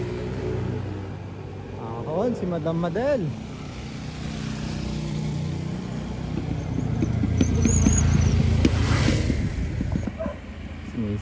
Ahon, si Madam Madel. Si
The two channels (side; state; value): both; identical; correlation 1.00